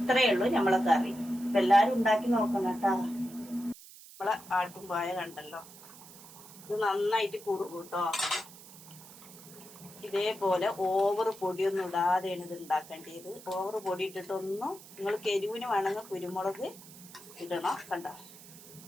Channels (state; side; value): noise; right; hiss, 19 dB below the sound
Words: ഉള്ളൂ നമ്മളെ കറി. അപ്പൊ എല്ലാരും ഉണ്ടാക്കി നോക്കണം കേട്ടാ. നമ്മളെ ആട്ടുംപായ കണ്ടല്ലോ, ഇത് നന്നായിട്ട് കുറുകും കേട്ടോ. ഇതേപോലെ ഓവർ പൊടിയൊന്നും ഇടാതെയാണ് ഇത് ഉണ്ടാക്കേണ്ടത്. ഓവർ പൊടി ഇട്ടിട്ടൊന്നും, നിങ്ങൾ എരിവിന് വേണമെങ്കിൽ കുരുമുളക് ഇടണം. കണ്ട